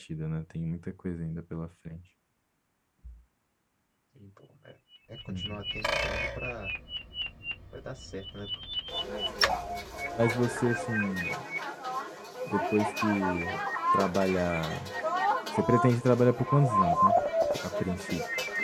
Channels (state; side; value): identical; both; correlation 1.00